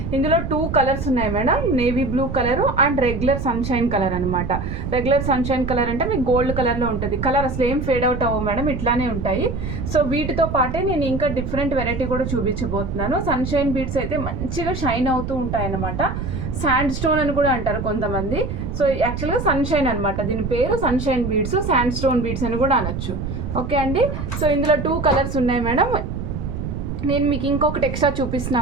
ఇందులో 2 కలర్స్ ఉన్నాయి madam, navy blue colour and regular sunshine colour అనమాట. రెగ్యులర్ సన్షైన్ కలర్ అంటే మీకు గోల్డ్ కలర్లో ఉంటుంది. కలర్ అసలు ఏం ఫేడ్ అవుట్ అవ్వవు మేడం, ఇట్లానే ఉంటాయి. సో వీటితో పాటే నేను ఇంకా డిఫరెంట్ వెరైటీ కూడా చూపించబోతున్నాను. సన్షైన్ బీడ్స్ అయితే మంచిగా షైన్ అవుతూ ఉంటాయి అన్నమాట. శాండ్ స్టోన్ అని కూడా అంటారు కొంతమంది. సో యాక్చువల్గా సన్షైన్ అనమాట, దీని పేరు sunshine beads, sand stone beads అని కూడా అనొచ్చు. ఓకే అండి. సో ఇందులో 2 కలర్స్ ఉన్నాయి మేడం. నేను మీకు ఇంకొకటి ఎక్స్ట్రా చూపిస్తున్నా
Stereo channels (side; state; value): right; noise; rumble, 5 dB below the sound